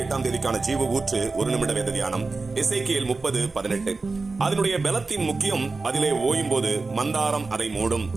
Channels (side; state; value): left; quieter; 3.8 dB